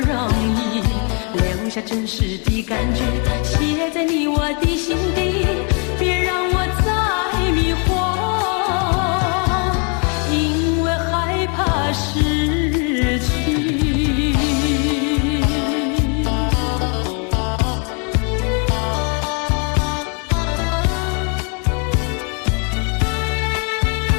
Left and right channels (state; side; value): quieter; right; 37.1 dB